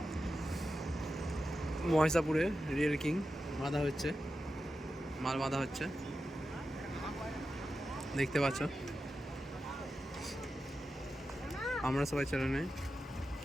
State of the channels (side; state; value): both; normal; correlation 0.91